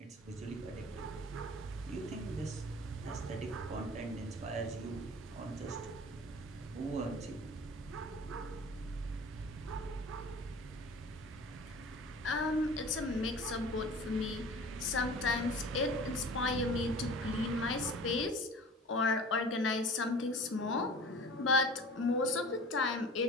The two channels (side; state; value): both; normal; correlation 0.41